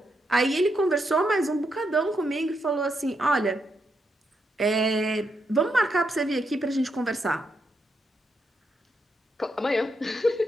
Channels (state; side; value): normal; both; correlation 0.81